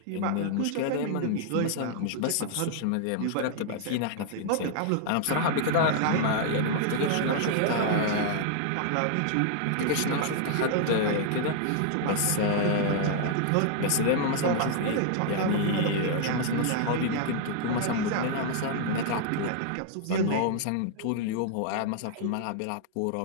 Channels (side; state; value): both; different; correlation -0.01